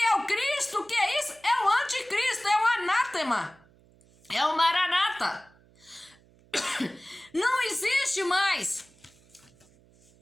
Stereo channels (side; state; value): right; noise; hum, 29 dB below the sound